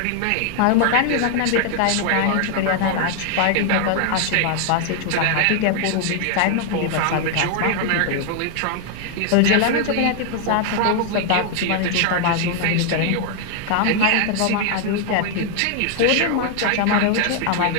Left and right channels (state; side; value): different; both; correlation 0.00